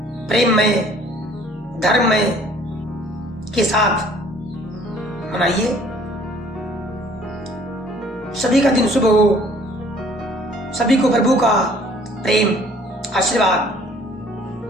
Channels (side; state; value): both; normal; correlation 0.56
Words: प्रेम में, धर्म में के साथ मनाइए। सभी का दिन शुभ हो, सभी को प्रभु का प्रेम आशीर्वाद